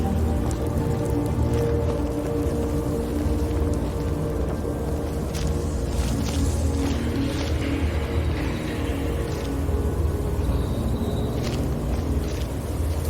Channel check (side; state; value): both; identical; correlation 1.00